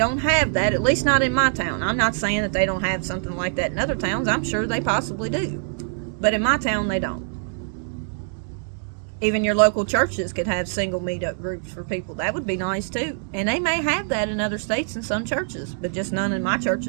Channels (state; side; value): silent; left; digital silence